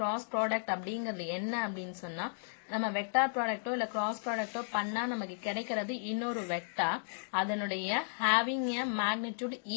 product அப்படிங்கிறது என்ன அப்படின்னு சொன்னா, நம்ம vector ப்ராடக்டோ இல்ல cross ப்ராடக்டோ பண்ணா நமக்கு கிடைக்கிறது இன்னொரு வெக்டார், அதனுடைய ஹேவிங் எ மேக்னிடியூட்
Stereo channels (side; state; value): right; silent; digital silence